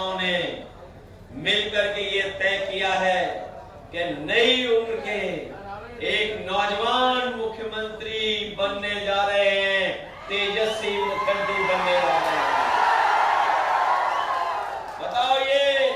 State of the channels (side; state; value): both; identical; correlation 1.00